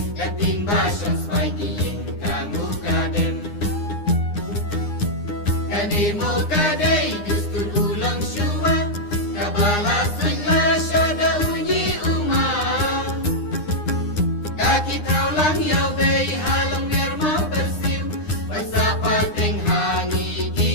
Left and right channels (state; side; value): late; right; 9.8 ms